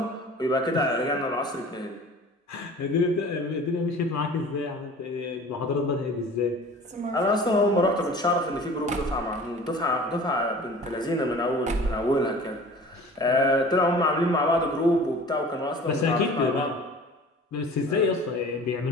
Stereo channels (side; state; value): both; normal; correlation 0.44